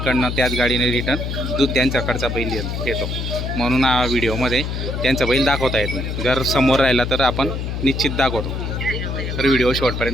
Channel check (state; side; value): noise; left; hum, 3 dB below the sound